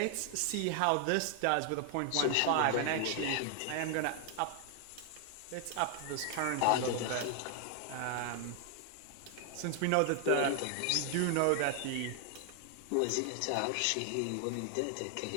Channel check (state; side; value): different; both; correlation 0.00